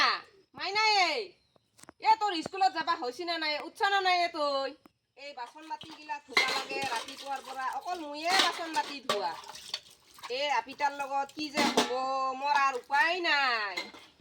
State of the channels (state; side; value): identical; both; correlation 1.00